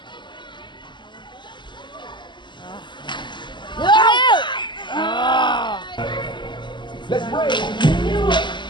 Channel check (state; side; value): late; right; 0.22 ms